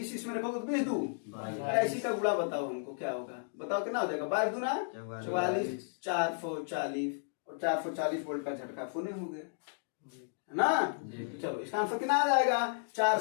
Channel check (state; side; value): silent; right; digital silence